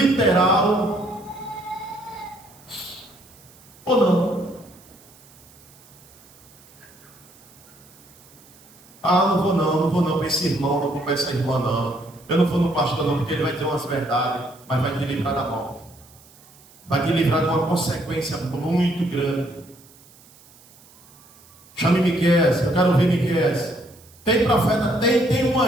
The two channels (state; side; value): noise; right; hiss, 25 dB below the sound